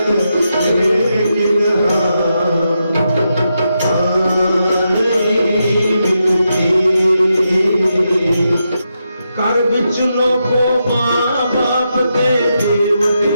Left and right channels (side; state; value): both; inverted; correlation -0.85